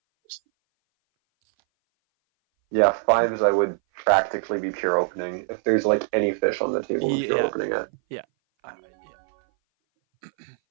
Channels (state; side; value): silent; left; 59 dB below the other